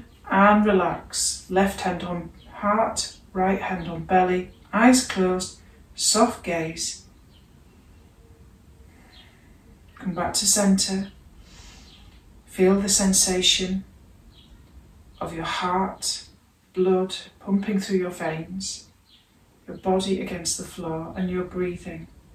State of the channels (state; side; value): identical; both; correlation 1.00